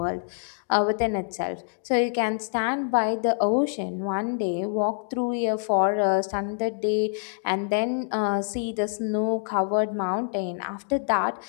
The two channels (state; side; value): silent; right; digital silence